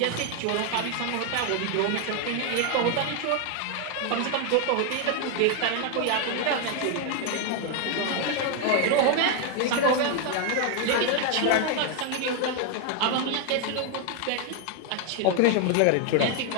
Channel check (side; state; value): both; different; correlation 0.01